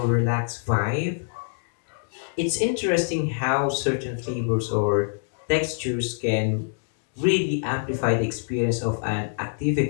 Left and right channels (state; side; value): silent; right; digital silence